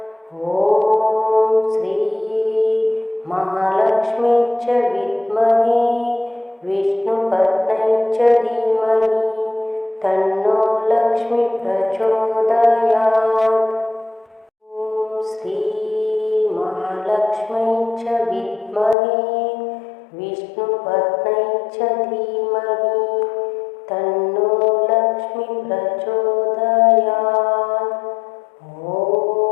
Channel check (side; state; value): right; drops out; at 18.9 s